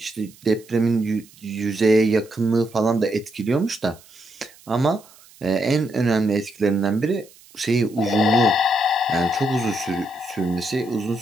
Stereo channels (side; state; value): right; noise; hiss, 25 dB below the sound